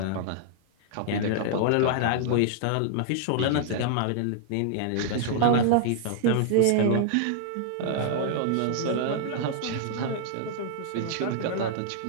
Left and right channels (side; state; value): both; different; correlation -0.01